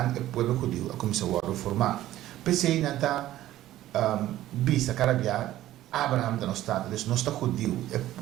pueblo judío, a comenzar a reformar. Pensé en esta vista, cara via, Abraham de nuestro estado, no está judío, el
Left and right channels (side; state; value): left; quieter; 14.2 dB